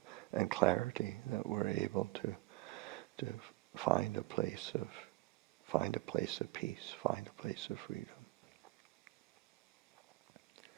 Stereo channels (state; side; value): quieter; left; 19.1 dB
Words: and clarity that we're able to find a place of peace, find a place of freedom.